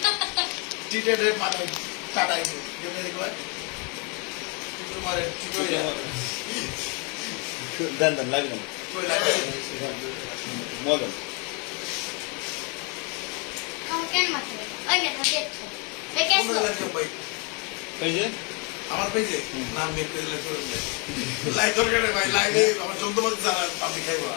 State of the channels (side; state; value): right; quieter; 33.1 dB